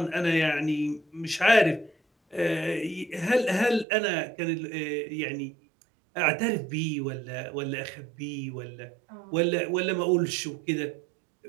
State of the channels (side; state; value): left; drops out; at 3.9 s